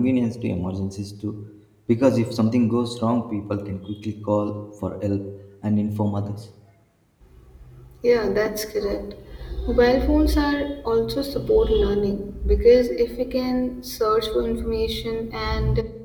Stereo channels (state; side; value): identical; both; correlation 1.00